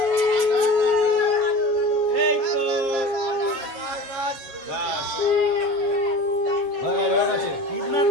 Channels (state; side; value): late; left; 7.7 ms